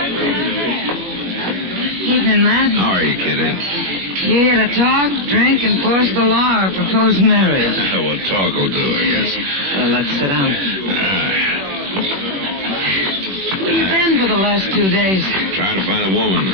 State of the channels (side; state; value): left; late; 21 ms